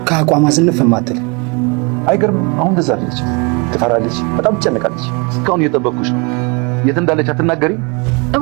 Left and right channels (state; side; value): quieter; left; 30.3 dB